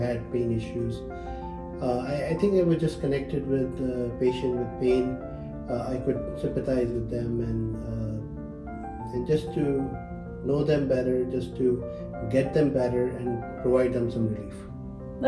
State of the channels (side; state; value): both; identical; correlation 1.00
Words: pain issues. I think I was just connected with the patient with pain. I could sympathize with them and just to know them better, just to get them better and provide them some relief.